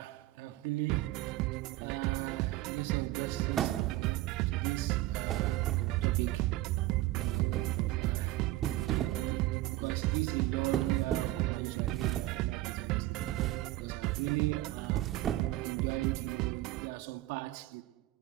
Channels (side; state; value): left; quieter; 16.7 dB